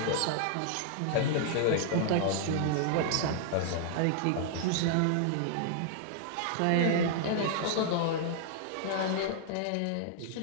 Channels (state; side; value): different; both; correlation -0.01